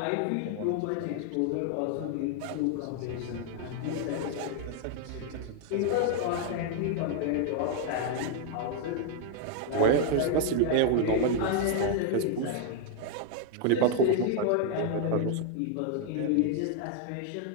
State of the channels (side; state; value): both; different; correlation 0.00